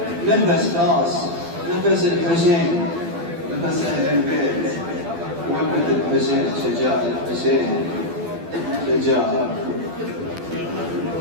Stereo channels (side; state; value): left; late; 12 ms